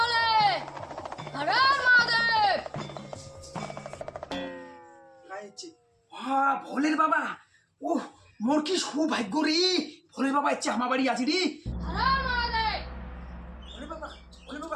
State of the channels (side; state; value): both; identical; correlation 1.00